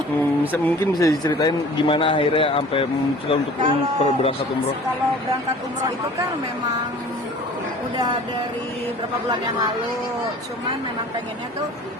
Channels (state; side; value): normal; both; correlation 0.46